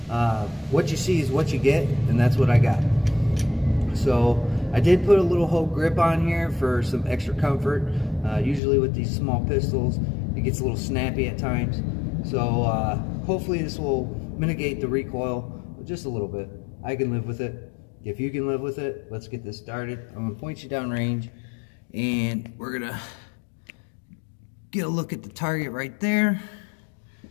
What you see is what you get, and that's what I got. So I did put a little Hogue grip on here for some extra comfort. Usually with these small pistols, it gets a little snappy at times. So hopefully this will mitigate the recoil just a little bit. I can live with it. If you can live with it, let's get this started. I'm gonna point you down range, and we're gonna get a look at the target right there.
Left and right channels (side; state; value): right; drops out; at 8.6 s